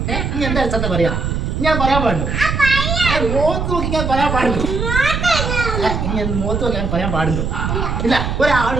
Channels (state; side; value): noise; right; rumble, 2 dB below the sound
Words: നീ എന്താ അടിസ്ഥാനത്തെ പറയാ? ഞാൻ പറയാൻ പാടുള്ളൂ. മുഖത്ത് നോക്കി ഞാൻ പറയാൻ പാടുള്ളൂ. ഇനി മുഖത്ത് നോക്കി ഞാൻ പറയാൻ പാടുള്ളൂ. ഇല്ല, ഒരാൾ